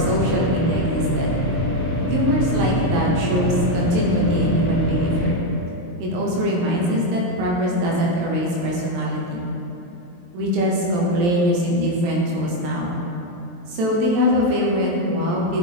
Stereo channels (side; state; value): left; late; 23 ms